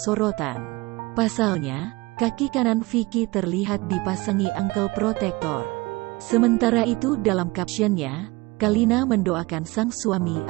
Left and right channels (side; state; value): left; quieter; 22.9 dB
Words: Pasalnya, kaki kanan Vicky terlihat dipasangi ankle protector. Sementara itu dalam captionnya, Kalina mendoakan sang suami